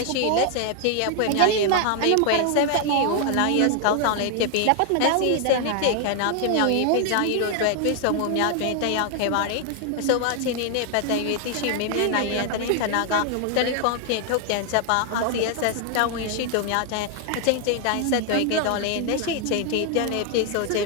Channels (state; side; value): different; both; correlation 0.00